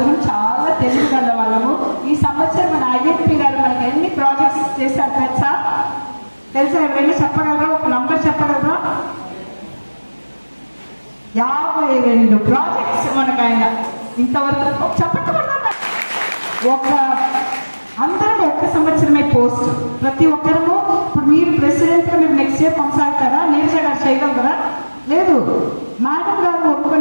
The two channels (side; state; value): both; inverted; correlation -1.00